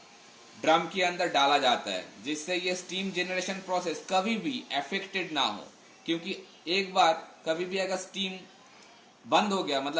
ड्रम के अंदर डाला जाता है, जिससे ये स्टीम जनरेशन प्रोसेस कभी भी अफेक्टेड ना हो. क्योंकि एक बार कभी भी अगर स्टीम बंद हो गया,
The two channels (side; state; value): both; identical; correlation 1.00